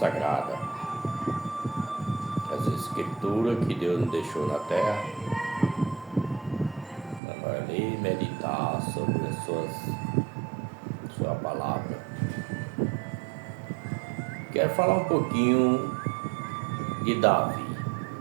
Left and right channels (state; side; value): drops out; left; at 7.2 s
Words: as escrituras que Deus nos deixou na terra, para ler e meditar sobre as sua palavra. Quero falar um pouquinho de Davi,